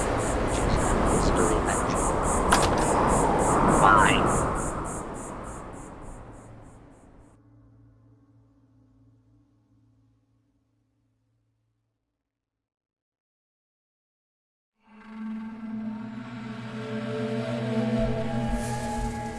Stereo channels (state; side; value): identical; both; correlation 1.00